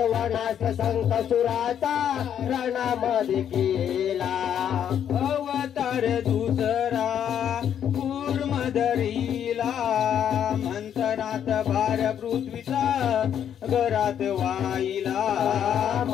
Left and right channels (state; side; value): quieter; right; 9.2 dB